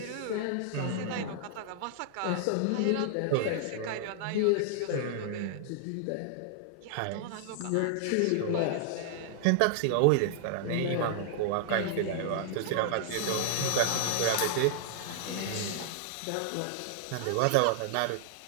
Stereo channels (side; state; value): both; different; correlation -0.01